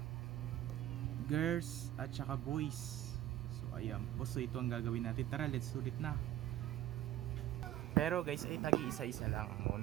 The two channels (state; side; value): quieter; left; 13.3 dB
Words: Girls at saka boys. So ayan po, so ito ang gagawin natin. Tara, let's sulit na. Pero guys, ay tagi-isa-isa lang